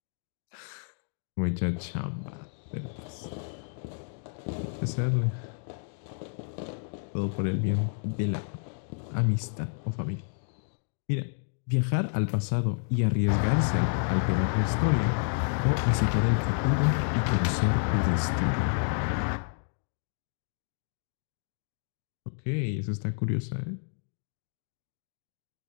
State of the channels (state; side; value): silent; right; digital silence